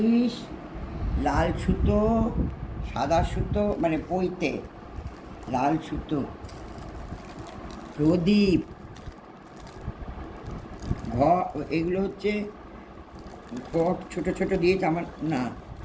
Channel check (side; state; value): both; identical; correlation 1.00